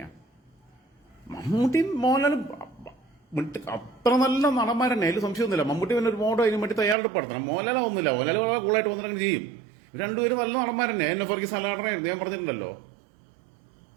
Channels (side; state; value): left; drops out; at 7.0 s